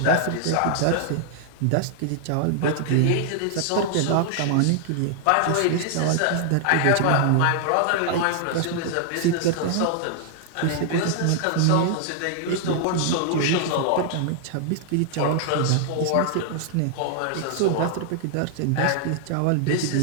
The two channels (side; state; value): both; different; correlation 0.00